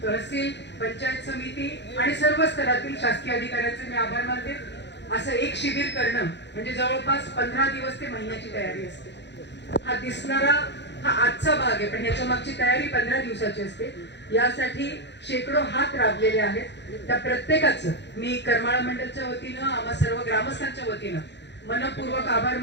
तहसील पंचायत समिती आणि सर्व स्तरातील शासकीय अधिकाऱ्यांचे मी आभार मानते। असं एक शिबिर करणं म्हणजे जवळपास 15 दिवस ते महिन्याची तयारी असते। हा दिसणारा हा आजचा भाग आहे पण याच्या मागची तयारी 15 दिवसाची असते। यासाठी शेकडो हात राबलेले आहेत। त्या प्रत्येकाचं मी करमाळा मंडळच्या वतीनं आम्हा सर्व ग्रामस्थांच्या वतीनं मनपूर्वक आभार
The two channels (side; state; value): right; late; 0.51 ms